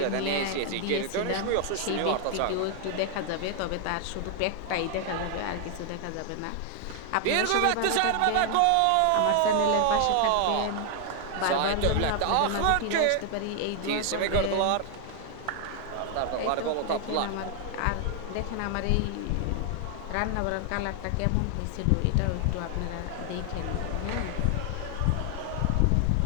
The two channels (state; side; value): different; both; correlation 0.00